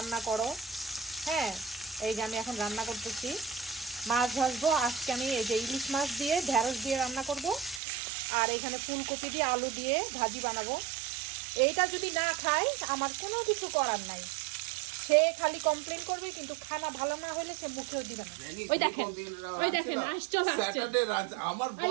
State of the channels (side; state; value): left; drops out; at 7.8 s